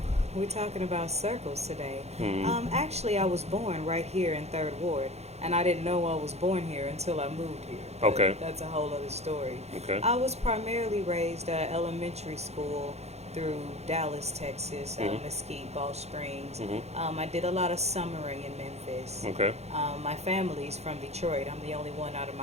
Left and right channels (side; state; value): left; late; 0.31 ms